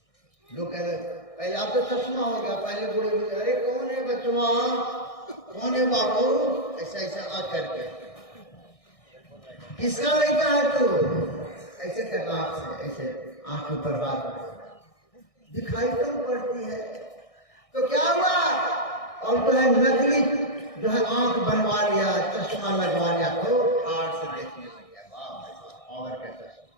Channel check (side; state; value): right; late; 1.6 ms